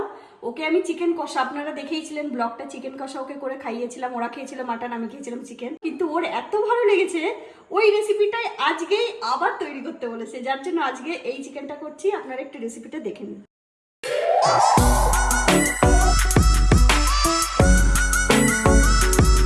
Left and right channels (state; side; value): identical; both; correlation 1.00